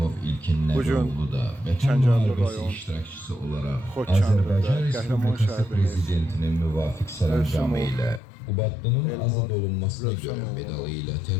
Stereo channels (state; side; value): drops out; right; at 8.2 s